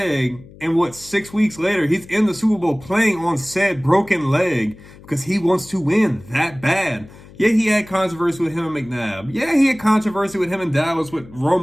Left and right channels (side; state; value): left; noise; hum, 21 dB below the sound